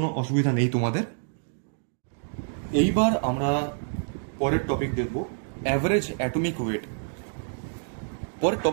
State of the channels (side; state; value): left; silent; digital silence